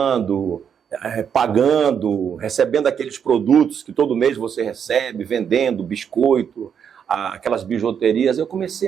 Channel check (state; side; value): quieter; left; 7.7 dB